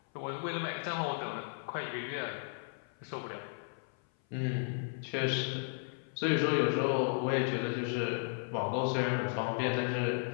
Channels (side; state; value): right; silent; 55 dB below the other